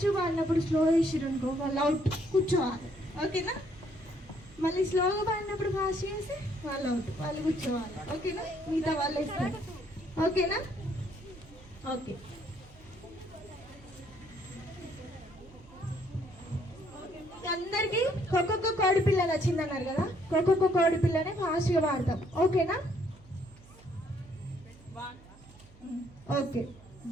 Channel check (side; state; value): right; noise; hum, 23 dB below the sound